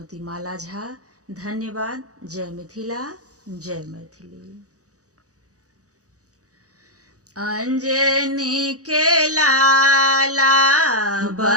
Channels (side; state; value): left; late; 0.66 ms